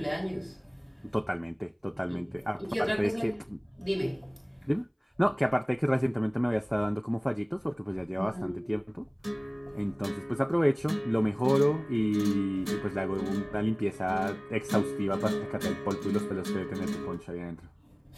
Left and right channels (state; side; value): identical; both; correlation 1.00